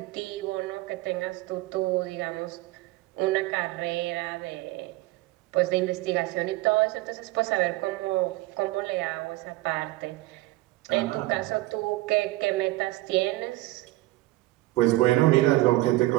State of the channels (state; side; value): quieter; left; 18.9 dB